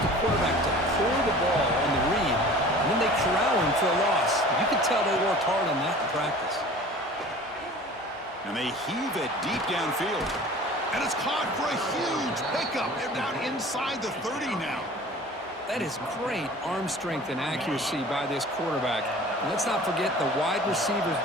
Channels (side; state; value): both; normal; correlation 0.43